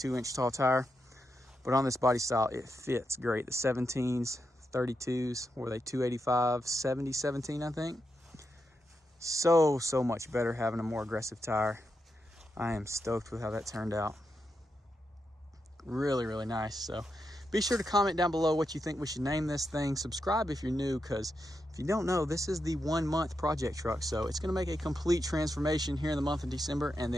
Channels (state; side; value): normal; both; correlation 0.85